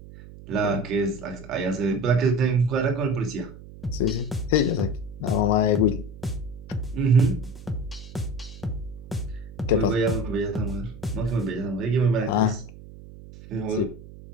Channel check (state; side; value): noise; right; hum, 17 dB below the sound